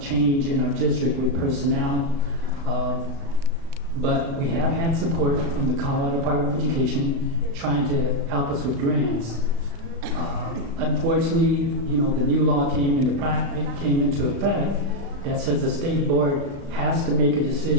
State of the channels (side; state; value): left; late; 36 ms